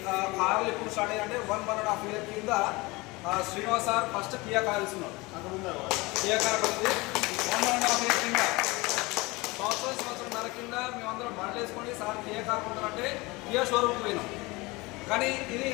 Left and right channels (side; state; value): right; quieter; 23.4 dB